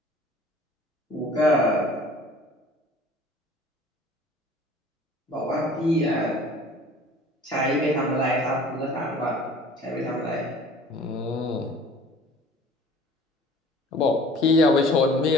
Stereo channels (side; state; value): both; normal; correlation 0.48